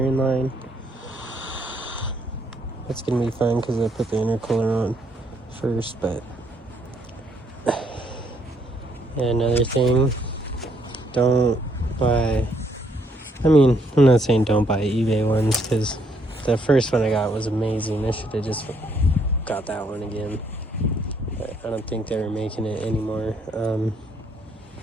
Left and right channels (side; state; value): both; normal; correlation 0.70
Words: line. That's gonna be fun because I put the intercooler on first, but yeah, another thing, don't buy, I'm not saying don't buy eBay ones because the first one I got was amazing. I should have just got that one again, but I don't think they were making it anymore.